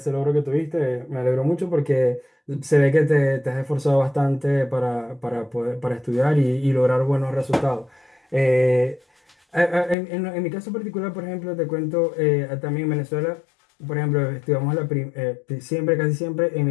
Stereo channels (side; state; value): right; drops out; at 10.0 s